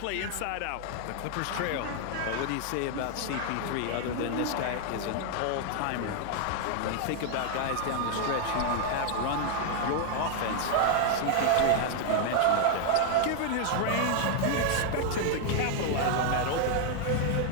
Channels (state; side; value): different; both; correlation 0.00